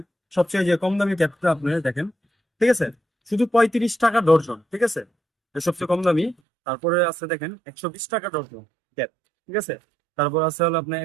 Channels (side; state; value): left; drops out; at 6.4 s